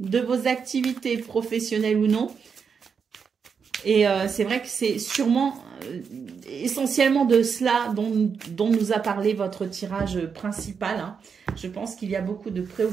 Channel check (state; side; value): quieter; left; 6.2 dB